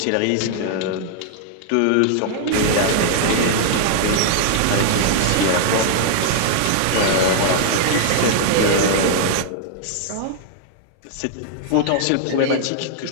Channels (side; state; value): both; different; correlation -0.01